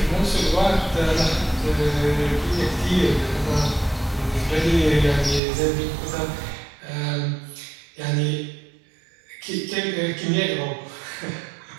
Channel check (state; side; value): drops out; left; at 5.4 s